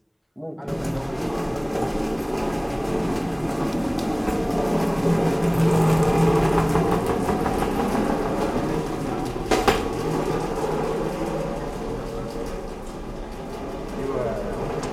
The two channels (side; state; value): both; identical; correlation 1.00